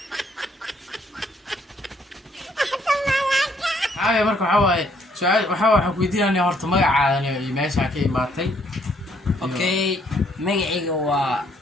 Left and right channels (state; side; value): normal; both; correlation 0.67